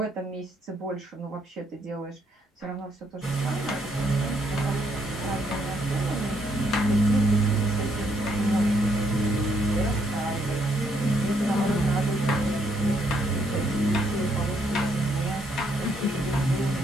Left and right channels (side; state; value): both; normal; correlation 0.72